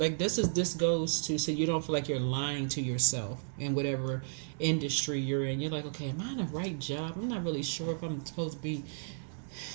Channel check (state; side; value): silent; left; 56 dB below the other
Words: this goes to so you don't feel like you're lying to yourself in whatever industry you're in. You're like, okay, am I in the right job? I'm not really sure if I'm supposed to be.